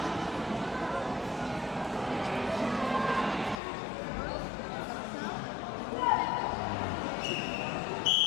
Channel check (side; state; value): right; drops out; at 3.6 s